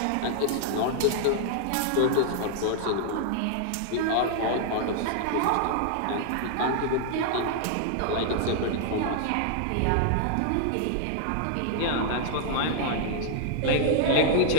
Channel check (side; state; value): both; different; correlation -0.01